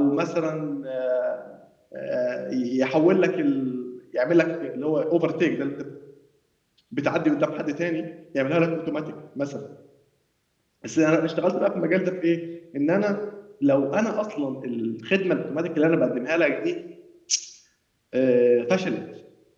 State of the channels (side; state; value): both; identical; correlation 1.00